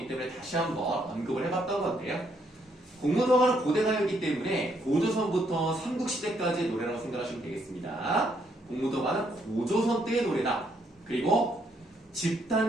때문에 다시 한번 언급을 해봤던 건데요. 공무도화는 고대 가요이기 때문에 고조선부터 삼국시대까지의 노래라고 생각하시면 되겠습니다. 공무도화는 고조선 때의 노래다. 그리고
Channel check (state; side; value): normal; both; correlation 0.73